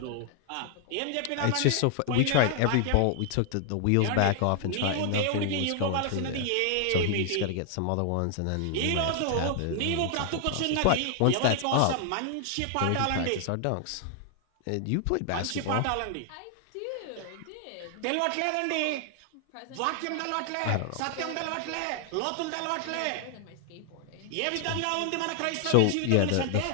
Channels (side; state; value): both; different; correlation 0.00